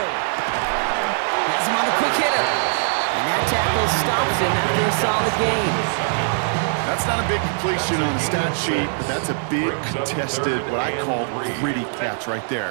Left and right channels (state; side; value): silent; left; 64 dB below the other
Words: Has him on the quick hitter. And that tackle stops him after a solid gain. That's not a big completion on the stat sheet, but that's a big contested, what I call gritty catch right there.